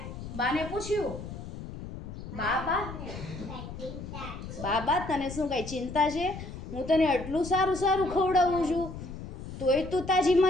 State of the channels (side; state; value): left; noise; rumble, 10 dB below the sound